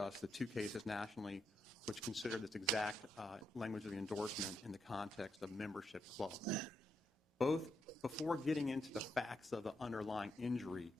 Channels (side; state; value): both; normal; correlation 0.81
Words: the two cases nationally which consider this exact language of the endorsement in the context of membership club. Both, before getting into the facts of the underlying injury